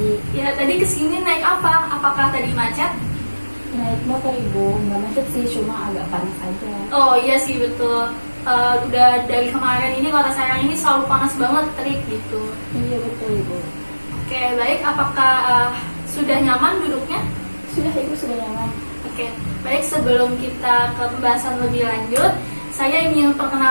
Ya, tadi kesini naik apa? Apakah tadi macet? Naik motor Ibu, nggak macet sih, cuma agak panas aja. Oh iya sih betul. Udah dari kemarin ini Kota Serang ini selalu panas banget, terik gitu. Iya betul Ibu. Oke, baik. Apakah sudah nyaman duduknya? Sudah Ibu, sudah nyaman. Oke, baik. Sebelum kita ke pembahasan lebih lanjut, saya ingin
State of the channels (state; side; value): inverted; both; correlation -1.00